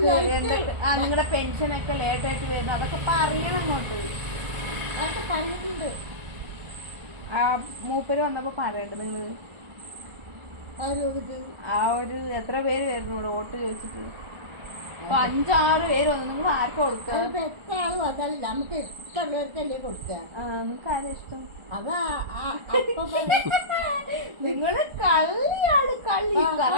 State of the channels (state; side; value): late; left; 1.4 ms